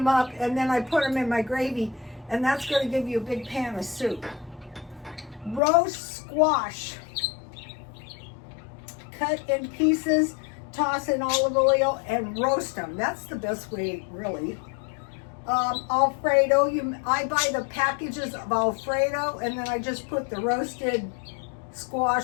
up, and then I put them in my gravy, and that's going to give you a big pan of soup. Roast squash. Cut in pieces, toss in olive oil, and roast them. That's the best way, really. Alfredo, I buy the packages of Alfredo, and then I just put the roasted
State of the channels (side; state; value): right; drops out; at 5.6 s